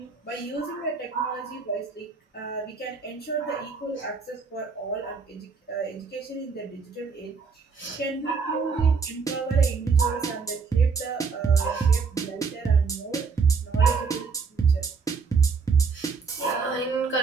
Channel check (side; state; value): left; quieter; 5.2 dB